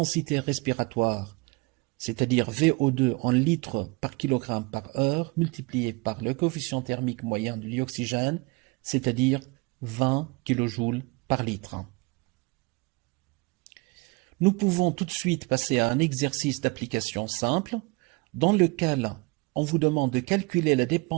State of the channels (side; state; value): left; quieter; 27.1 dB